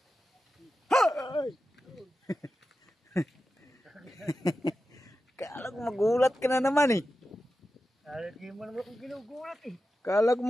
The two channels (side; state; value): both; normal; correlation 0.91